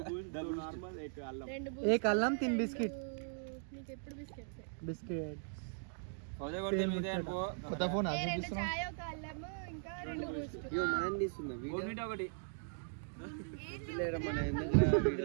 एक అల్లం 3 బిస్కెట్ బిస్కెట్. కొత్త ఫోన్ ఒకటి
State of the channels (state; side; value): silent; left; digital silence